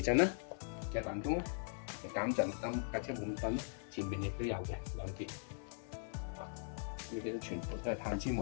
震啦，嘅彈弓啦，減震燈架車冇咁震啦，前面亦都有嘅2邊。呢啲都全部都係碳纖維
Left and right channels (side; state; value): right; silent; 51 dB below the other